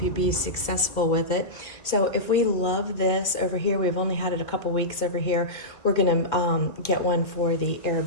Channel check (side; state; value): right; late; 1.8 ms